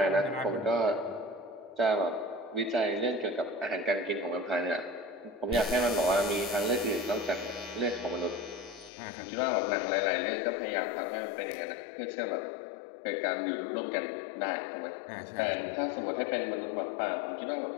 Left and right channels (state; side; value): drops out; right; at 8.9 s